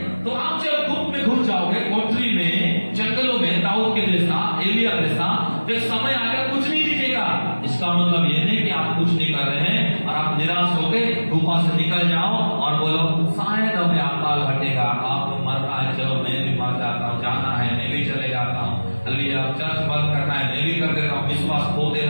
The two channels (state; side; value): inverted; both; correlation -1.00